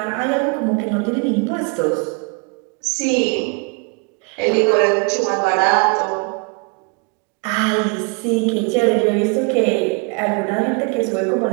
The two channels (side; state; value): left; quieter; 32.3 dB